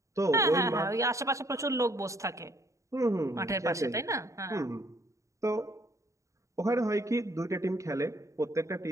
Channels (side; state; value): left; late; 0.15 ms